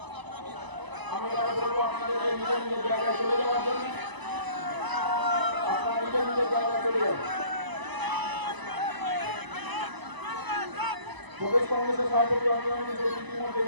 আমি বলবো আপনাদের নিজের নিজের জায়গায় চলে যাওয়ার জন্য, আপনারা নিজের নিজের জায়গায় চলে যান। প্রদেশ কংগ্রেসের সভাপতি অঞ্জন ইতিমধ্যে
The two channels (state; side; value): late; left; 1.0 ms